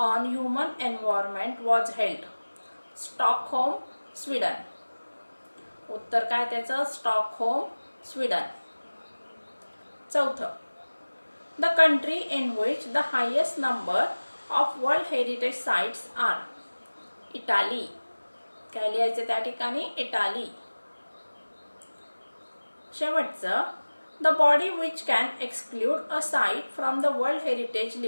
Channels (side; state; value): both; inverted; correlation -1.00